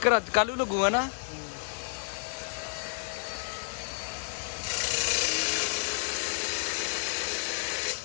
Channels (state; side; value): silent; right; digital silence